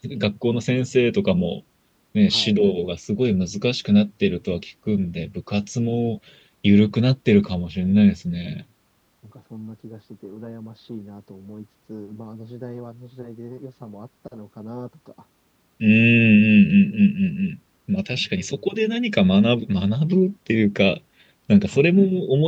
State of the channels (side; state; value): both; identical; correlation 1.00